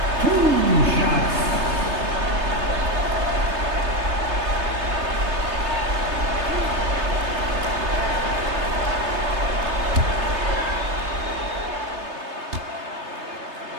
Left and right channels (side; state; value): left; late; 3.3 ms